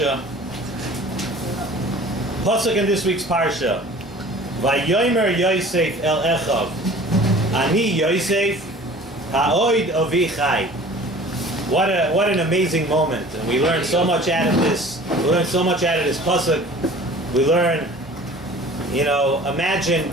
Pasuk in this week's Parsha. Vayomer Yosef el Echav, Ani Yosef ha'oid avi chai. What an amazing moment, and we learn so much out of this. We learn so much out of this pasuk. We learn, imagine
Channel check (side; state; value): both; normal; correlation 0.45